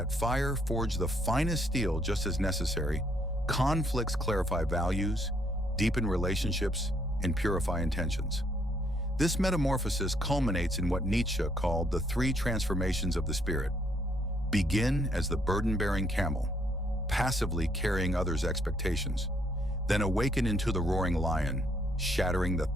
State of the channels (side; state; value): both; normal; correlation 0.69